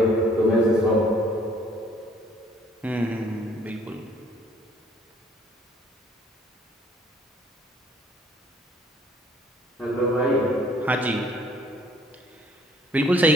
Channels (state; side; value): normal; both; correlation 0.60